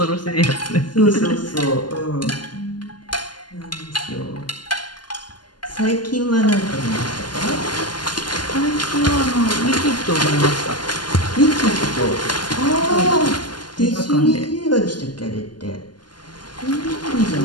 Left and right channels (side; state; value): right; late; 0.71 ms